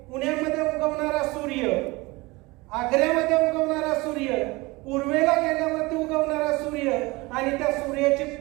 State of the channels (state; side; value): quieter; left; 23.1 dB